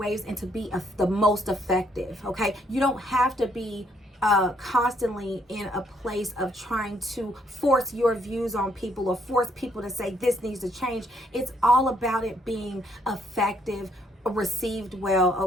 and to be the most effective. Okay, you don't have to be constantly in a place of trying to force your views on people or force people to say this needs to change. It's all about it being effective, received well,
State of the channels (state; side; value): normal; both; correlation 0.70